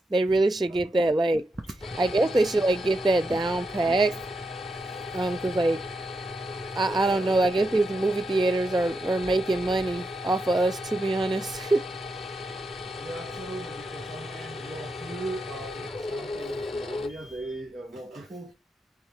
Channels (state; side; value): normal; both; correlation 0.85